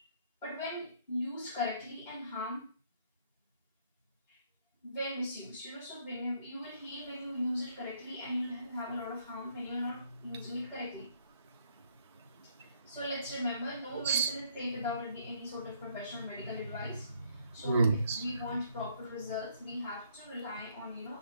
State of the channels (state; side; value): inverted; both; correlation -0.67